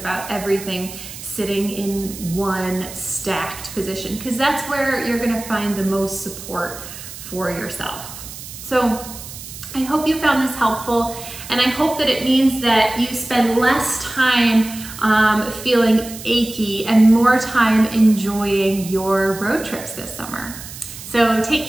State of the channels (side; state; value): right; noise; hiss, 13 dB below the sound